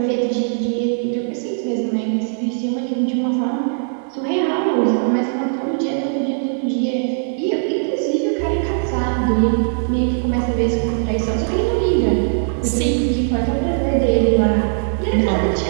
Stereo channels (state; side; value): silent; left; digital silence